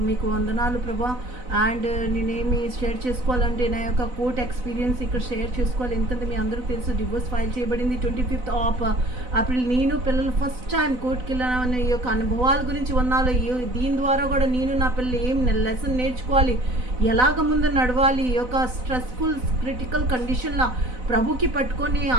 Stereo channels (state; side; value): late; left; 4.0 ms